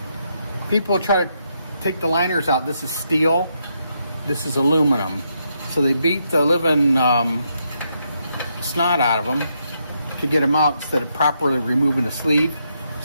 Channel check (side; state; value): both; inverted; correlation -0.79